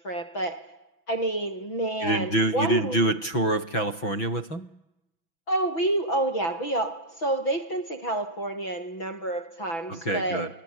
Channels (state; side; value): late; right; 6.1 ms